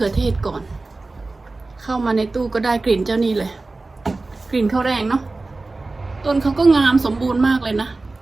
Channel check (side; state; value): left; quieter; 3.4 dB